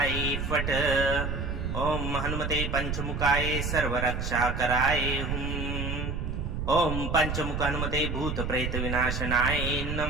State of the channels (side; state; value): right; noise; rumble, 3 dB below the sound